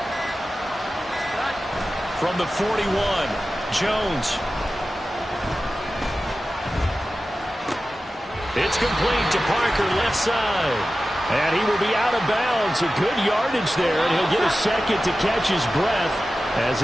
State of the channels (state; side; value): normal; both; correlation 0.94